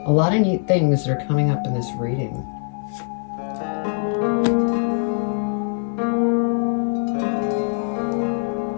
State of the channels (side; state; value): right; silent; 60 dB below the other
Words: a lot of neat things that are coming up in this reading.